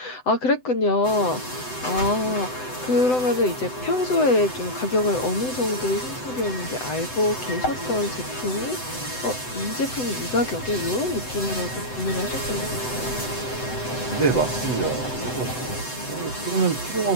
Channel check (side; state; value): right; late; 7.9 ms